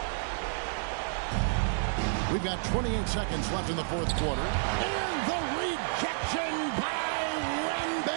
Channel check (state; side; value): silent; left; 58 dB below the other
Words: We've got 28 seconds left in the fourth quarter. And the rejection by